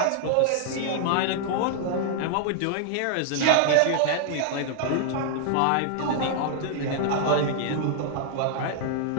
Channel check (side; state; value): both; different; correlation -0.01